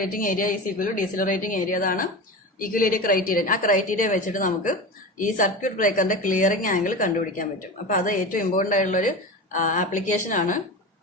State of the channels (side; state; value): both; normal; correlation 0.27